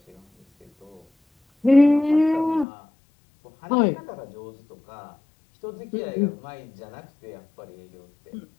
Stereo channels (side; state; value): right; drops out; at 2.7 s